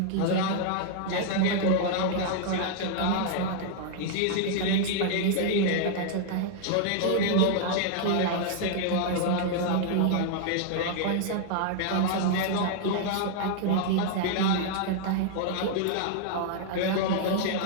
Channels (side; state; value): both; different; correlation -0.01